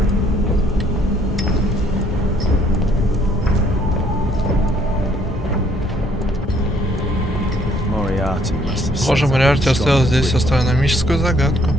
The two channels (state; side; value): normal; both; correlation 0.65